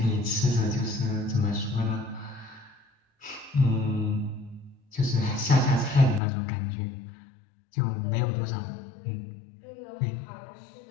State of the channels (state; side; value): drops out; right; at 6.2 s